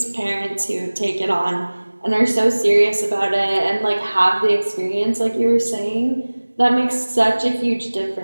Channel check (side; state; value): both; inverted; correlation -1.00